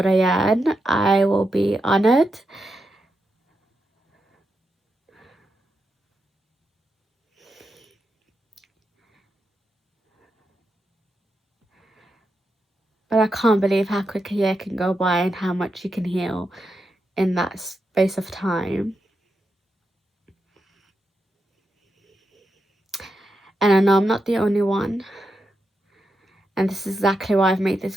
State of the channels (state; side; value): normal; both; correlation 0.86